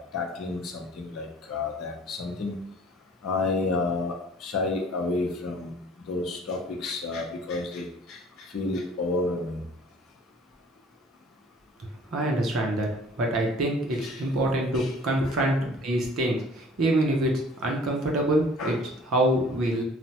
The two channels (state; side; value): normal; both; correlation 0.52